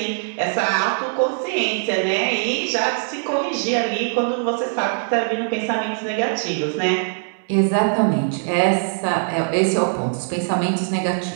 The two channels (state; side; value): silent; left; digital silence